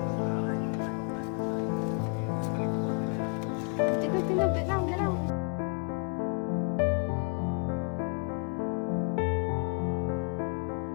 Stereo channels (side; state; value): right; quieter; 36.2 dB